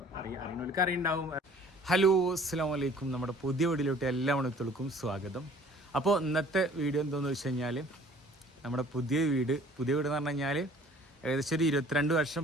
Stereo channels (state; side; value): normal; both; correlation 0.52